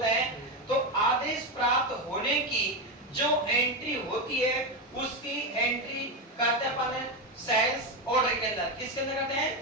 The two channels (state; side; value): normal; both; correlation 0.11